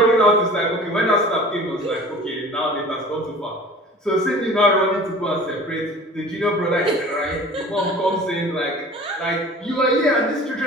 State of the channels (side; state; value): both; normal; correlation 0.43